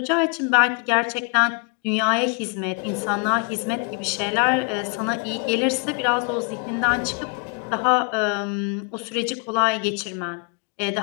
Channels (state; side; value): quieter; right; 34.0 dB